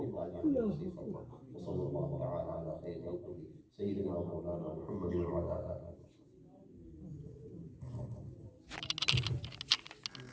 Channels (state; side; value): identical; both; correlation 1.00